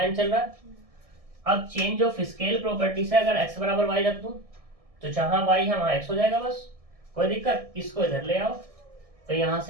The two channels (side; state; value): left; late; 1.6 ms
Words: n चल रहा है। अब चेंज ऑफ स्केल प्रॉपर्टी से अगर x बराबर y रख दूं तो जहां y है वहां x हो जाएगा, बस कोई दिक्कत। इसको इधर ले आओ तो यहां